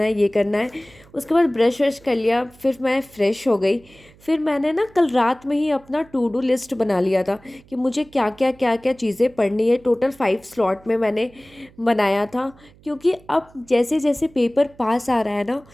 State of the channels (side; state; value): right; noise; hum, 27 dB below the sound